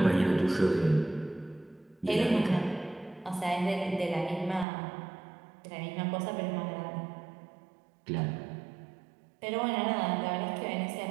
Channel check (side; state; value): left; drops out; at 4.7 s